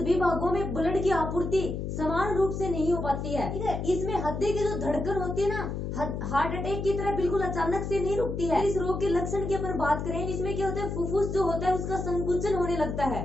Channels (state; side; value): noise; left; hum, 4 dB below the sound